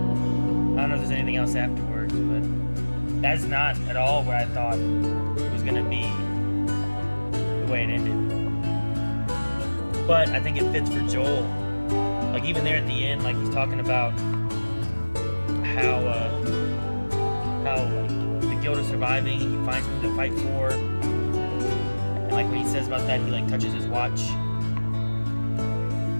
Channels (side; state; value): both; inverted; correlation -1.00